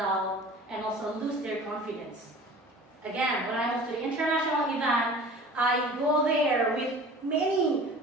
and also lose their confidence. Again, when I moved to the international event, I go there with many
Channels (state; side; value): normal; both; correlation 0.42